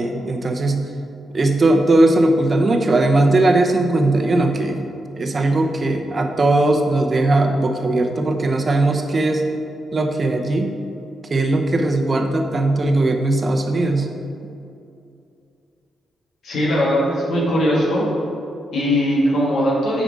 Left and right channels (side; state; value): both; normal; correlation 0.86